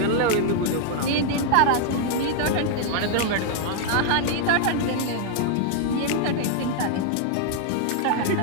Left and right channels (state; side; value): different; both; correlation 0.00